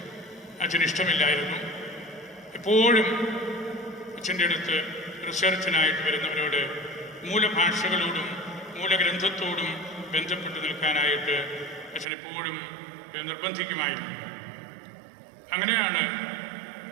അച്ഛന് ഇഷ്ടമില്ലായിരുന്നു. എപ്പോഴും അച്ഛൻ്റെ അടുത്ത് റിസർച്ചിനായിട്ട് വരുന്നവരോട് മൂലഭാഷകളോടും മൂലഗ്രന്ഥത്തോടും ബന്ധപ്പെട്ട് നിൽക്കാനായിട്ട് അച്ഛനെപ്പോഴും നിർബന്ധിക്കുമായിരുന്നു. അങ്ങനെയാണ്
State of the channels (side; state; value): left; drops out; at 12.1 s